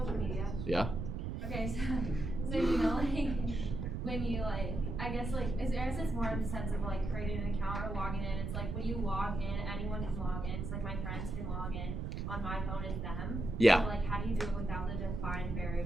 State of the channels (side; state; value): right; noise; rumble, 4 dB below the sound